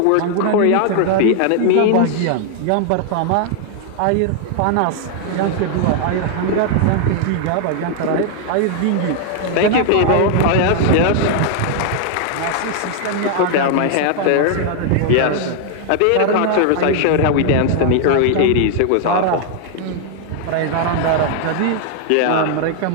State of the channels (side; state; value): both; different; correlation 0.00